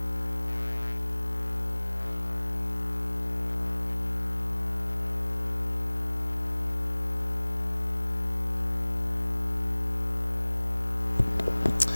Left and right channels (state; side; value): inverted; both; correlation -1.00